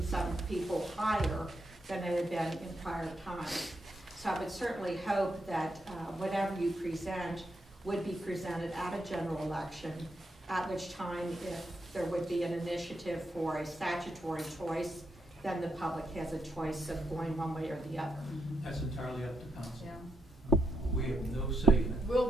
people higher than it had been in prior times. So I would certainly hope that whatever you present would be presented at a general election, at which time if there would be an initiative for a statutory choice, then the public has a choice of going one way or the other. That's entirely up to council. yeah. We have no say in it.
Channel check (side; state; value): both; normal; correlation 0.82